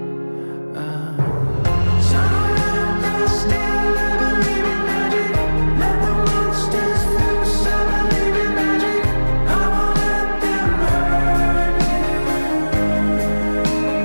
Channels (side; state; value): both; inverted; correlation -1.00